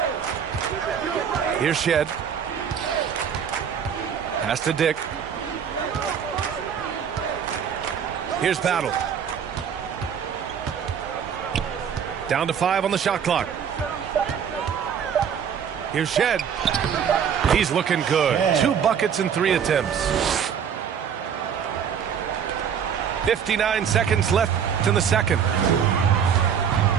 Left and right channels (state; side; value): quieter; left; 7.8 dB